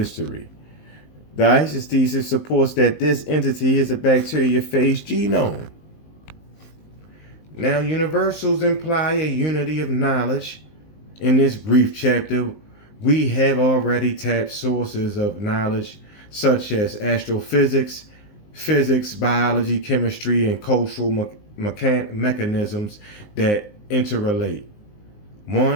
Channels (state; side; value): late; right; 19 ms